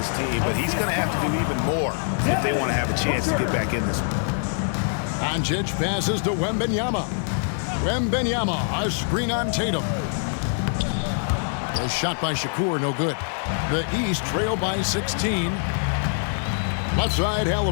team, but he's going to have to do even more if they want to have a chance to get back in this one. Doncic passes to Wembanyama. Wembanyama, a screen on Tatum. A shot by Shakur, no good. The East trail by 16. Left side,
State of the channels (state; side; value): silent; right; digital silence